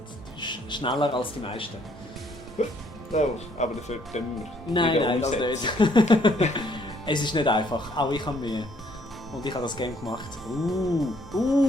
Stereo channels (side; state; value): both; normal; correlation 0.65